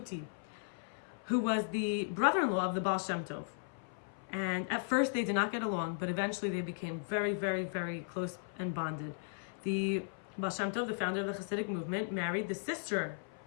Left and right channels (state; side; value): silent; right; 54 dB below the other